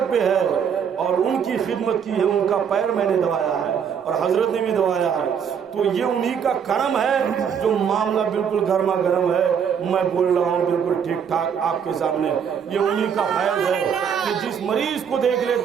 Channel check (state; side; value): quieter; left; 7.5 dB